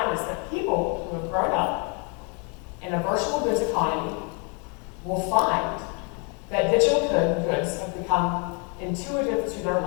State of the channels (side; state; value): right; quieter; 35.2 dB